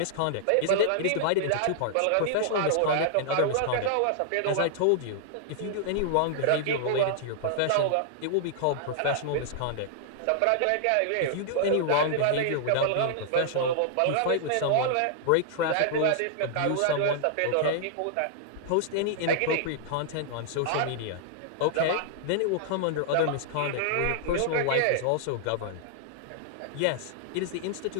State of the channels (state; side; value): different; both; correlation -0.01